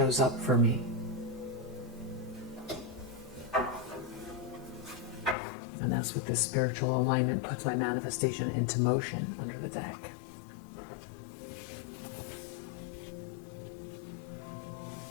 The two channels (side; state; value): right; drops out; at 5.4 s